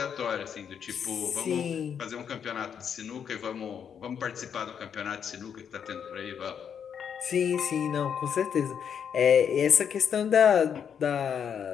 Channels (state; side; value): quieter; right; 7.8 dB